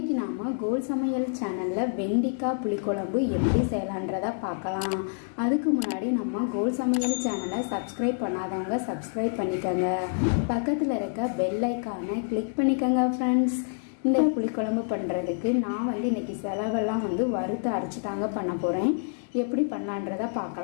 நாம் கோல் சமையல் சேனலில் வெண்டிக்காய் புளிக்குழம்பு எப்படி செய்யலான்றதை பார்க்கலாம். அதுக்கு முன்னாடி நம்ம கோல் சமையல் சேனலை சப்ஸ்கிரைப் பண்ணாதவங்க சப்ஸ்கிரைப் பண்ணிக்கோங்க. பக்கத்தில் இருக்க பெல் ஐக்கானை கிளிக் பண்ணிக்கோங்க ஃப்ரெண்ட்ஸ். இந்த புளிக்குழம்பு பண்ணுறதுக்கு நான் இன்றைக்கி செலவெல்லாம் வறுத்து அரைச்சி தாங்க பண்ண போகிறேன். எப்படி பண்ணலான்றதை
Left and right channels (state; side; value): silent; right; digital silence